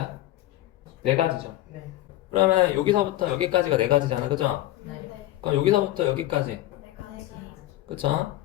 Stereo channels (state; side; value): quieter; right; 15.3 dB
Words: 네 가지죠. 네. 그러면 여기서부터 여기까지가 네 가지잖아, 그죠? 네. 그럼 여기서부터 여기까지, 내가지. 그죠?